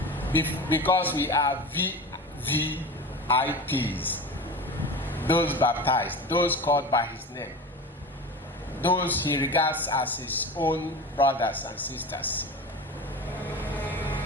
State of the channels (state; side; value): normal; both; correlation 0.31